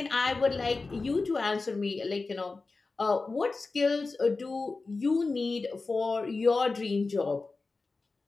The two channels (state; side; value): quieter; right; 3.8 dB